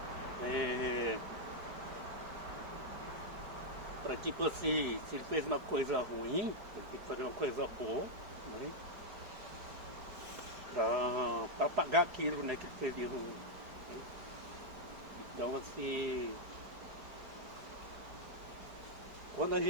para, tipo assim, se ele fez uma coisa ruim, ele tem que fazer uma coisa boa, né, para pagar aquilo, né, que ele fez de ruim, né? Então, assim, quando a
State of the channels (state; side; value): late; left; 4.7 ms